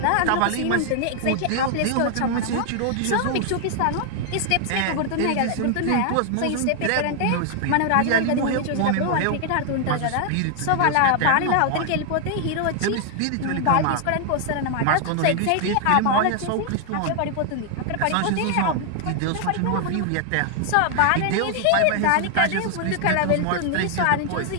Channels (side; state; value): both; different; correlation 0.00